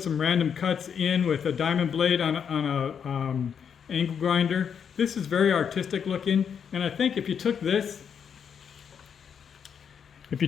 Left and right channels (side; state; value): right; quieter; 7.5 dB